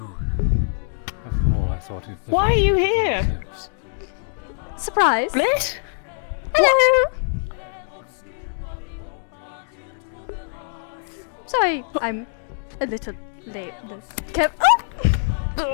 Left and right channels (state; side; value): silent; right; digital silence